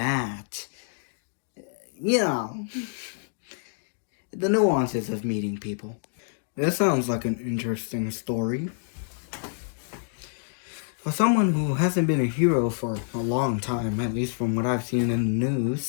you know, the nuances of meeting people. That sounds like an interesting story. For someone who hasn't been a hero for a long time, at least from what I've seen in the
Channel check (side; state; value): right; silent; digital silence